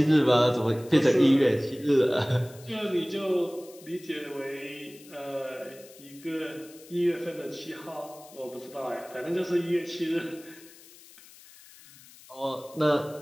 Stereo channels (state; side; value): noise; left; hiss, 22 dB below the sound